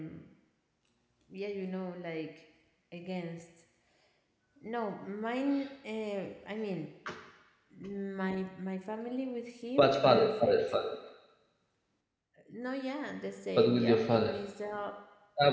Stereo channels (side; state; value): both; identical; correlation 1.00